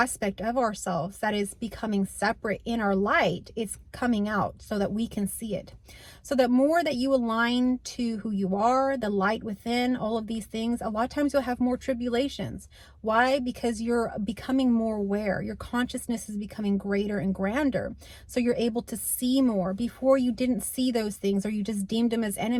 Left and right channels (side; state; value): both; identical; correlation 1.00